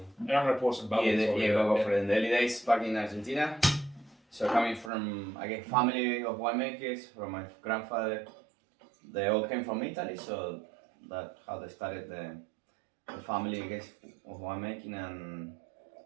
And I'm going to pour some bubbles. Go for the early days back in Argentina. So coming from, I guess, family of winemakers, from my grandfather, they all came from Italy, so that's how they started the family, I guess, of winemaking.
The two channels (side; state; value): left; drops out; at 4.9 s